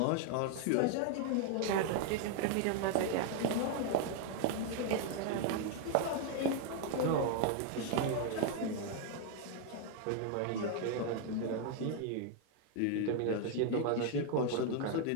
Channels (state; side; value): different; both; correlation 0.00